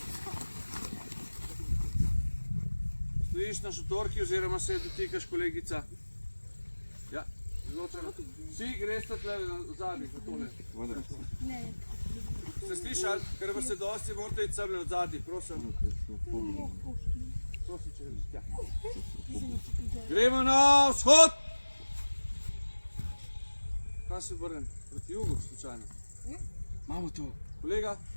Stojiš na šotorki oziroma se dotikaš, kolegica. Ja, izločeno. Vsi greste tle v zadnji, za tole. Ste slišali? Ker vas je dosti, morate iti semle od zadnji, prosim. Prosim, če greš tja. Gremo na vzhod. Kaj se obrnem? Proti jugu, slučajno. Imamo to. Kolega,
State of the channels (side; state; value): both; inverted; correlation -1.00